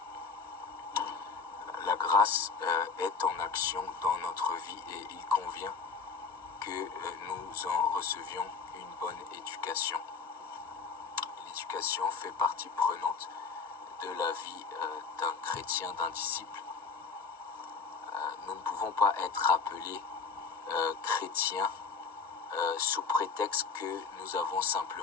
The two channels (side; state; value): right; quieter; 5.2 dB